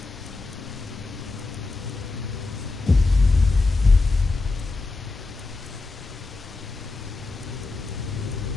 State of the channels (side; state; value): right; quieter; 3.5 dB